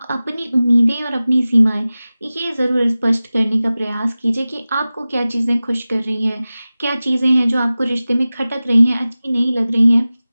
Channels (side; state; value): both; inverted; correlation -0.97